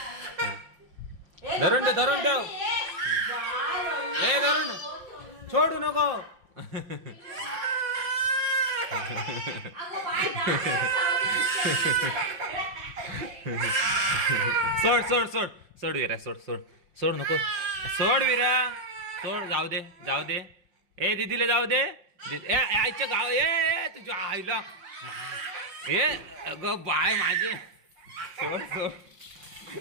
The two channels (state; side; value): late; left; 5.7 ms